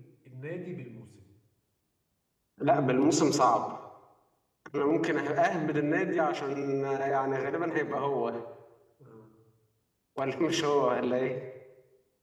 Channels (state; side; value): identical; both; correlation 1.00